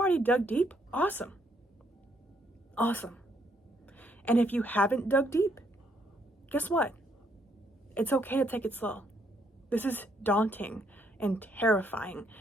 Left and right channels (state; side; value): normal; both; correlation 0.71